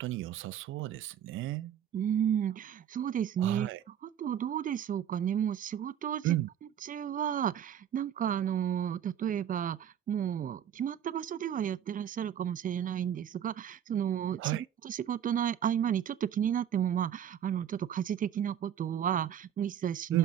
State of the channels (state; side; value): quieter; left; 9.6 dB